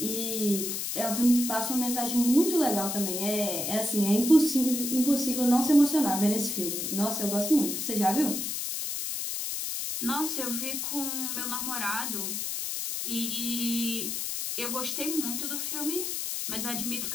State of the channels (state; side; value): noise; left; hiss, 3 dB below the sound